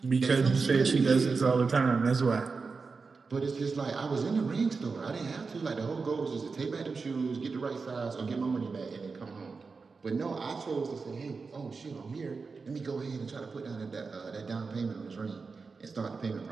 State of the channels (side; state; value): left; quieter; 4.6 dB